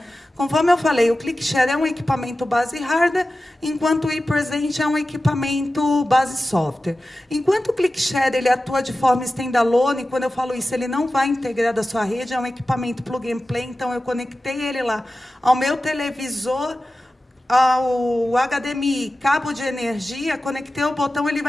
Conforme eu falei, o ClickShare é um equipamento base hardware, enquanto o ePresent é um equipamento base software. Enquanto o ClickShare ele atua de forma standalone, quando eu falo isso, ele não vai integrar da sua rede, é um equipamento plug and play, então eu conectei ele lá ao meu televisor, ao HDMI, cabo de energia, conectei o botão, ele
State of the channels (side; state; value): both; normal; correlation 0.94